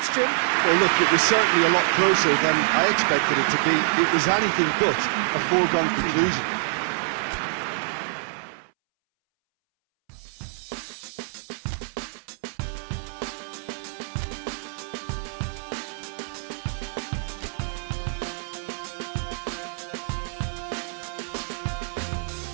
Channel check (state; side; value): silent; left; 61 dB below the other